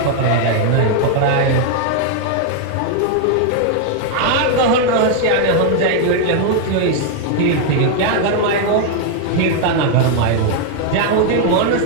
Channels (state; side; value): different; both; correlation 0.00